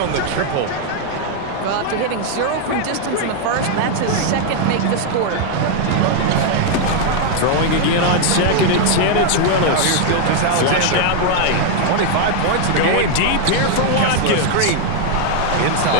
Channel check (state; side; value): different; both; correlation 0.00